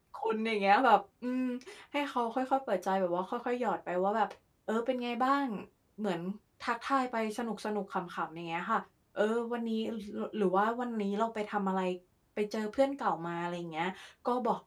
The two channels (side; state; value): both; identical; correlation 1.00